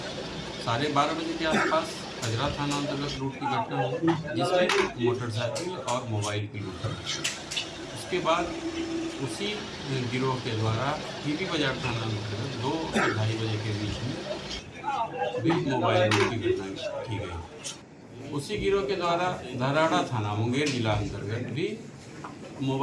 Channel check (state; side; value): identical; both; correlation 1.00